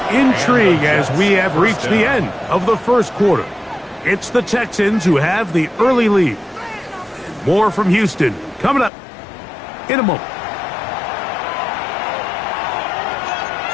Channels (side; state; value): right; drops out; at 8.9 s